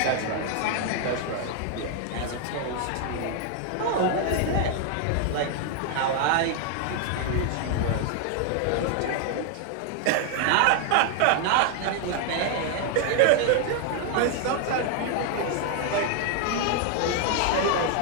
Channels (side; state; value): both; different; correlation 0.00